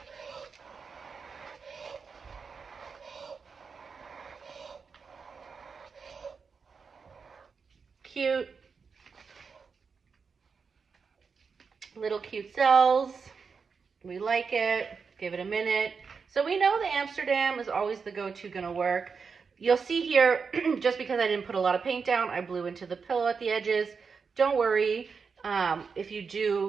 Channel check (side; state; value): left; quieter; 5.5 dB